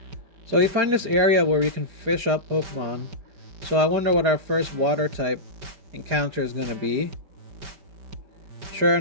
So we find this area where we can fish up Pokemon. So I wonder what our first water type encounter is going to be. Sure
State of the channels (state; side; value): late; left; 4.9 ms